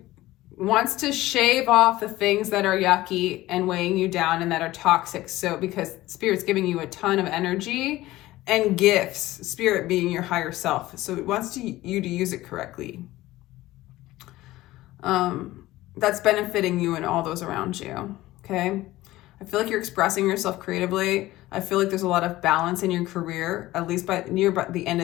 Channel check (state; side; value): quieter; right; 17.1 dB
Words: wants to shave off the things that are yucky and weighing you down and that are toxic. So because Spirit's giving you a ton of energy and gifts, Spirit being your higher self. So it wants you to use it correctly. That's benefiting you and all those around you. Okay. I feel like you're expressing yourself creatively. I feel like there's a lot of balance in your career, at least by the end